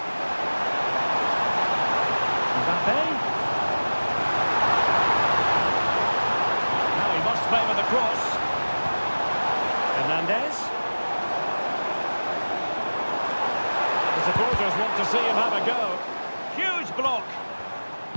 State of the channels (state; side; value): inverted; both; correlation -1.00